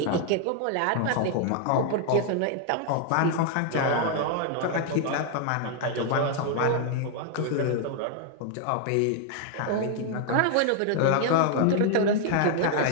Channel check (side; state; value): both; different; correlation 0.00